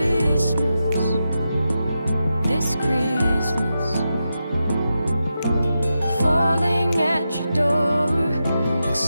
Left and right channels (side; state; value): both; inverted; correlation -0.89